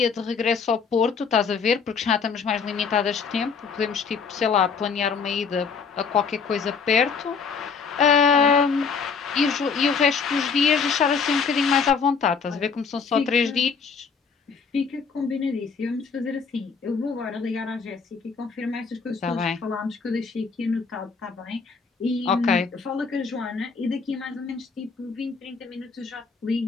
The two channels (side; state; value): right; quieter; 5.6 dB